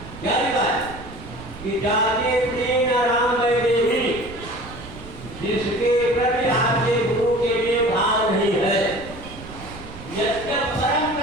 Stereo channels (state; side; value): noise; right; rumble, 15 dB below the sound